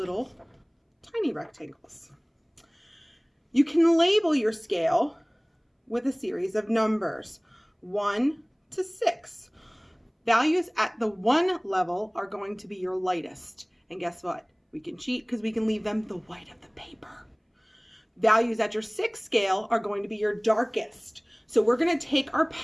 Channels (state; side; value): identical; both; correlation 1.00